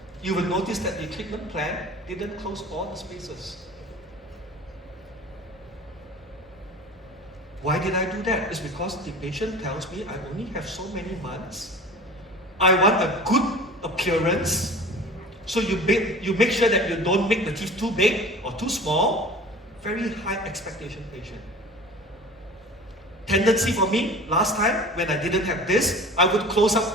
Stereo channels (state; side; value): normal; both; correlation 0.40